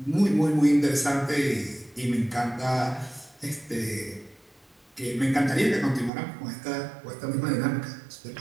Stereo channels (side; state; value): left; drops out; at 6.1 s